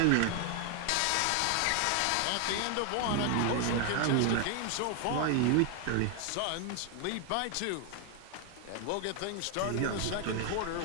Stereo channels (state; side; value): different; both; correlation 0.00